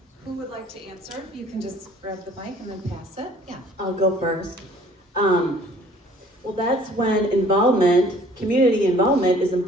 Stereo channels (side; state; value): both; normal; correlation 0.55